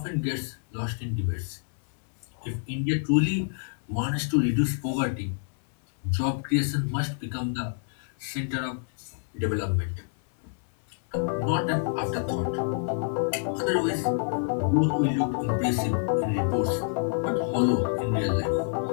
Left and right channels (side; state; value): right; silent; 60 dB below the other